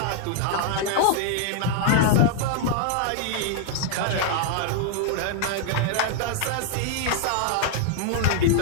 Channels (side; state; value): both; different; correlation -0.01